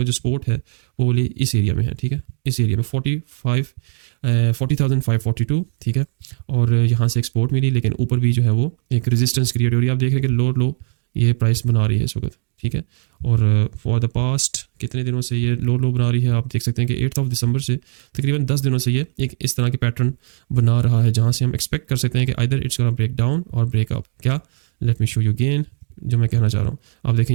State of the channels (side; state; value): left; silent; digital silence